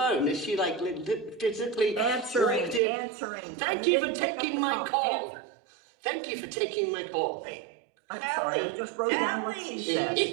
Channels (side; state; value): left; drops out; at 2.8 s